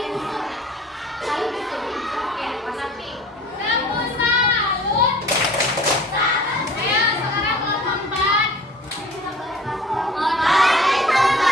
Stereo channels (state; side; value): normal; both; correlation 0.46